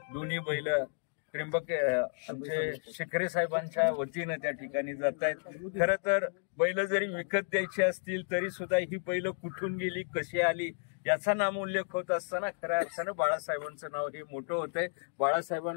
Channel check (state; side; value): silent; right; 56 dB below the other